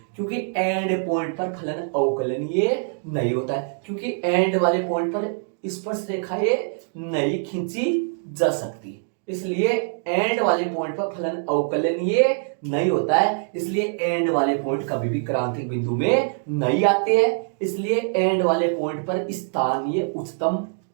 क्योंकि एंड पॉइंट पर फलन अवकलनीय नहीं होता है, क्योंकि एंड वाले पॉइंट पर स्पर्श रेखाएं नहीं खींची जा सकती, इसलिए एंड वाले पॉइंट पर फलन अवकलनीय नहीं होता है, इसलिए एंड वाले पॉइंट कभी भी क्रांतिक बिंदु में नहीं आते हैं। इसलिए एंड वाले पॉइंट पर स्थानीय उच्चतम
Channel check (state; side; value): silent; left; digital silence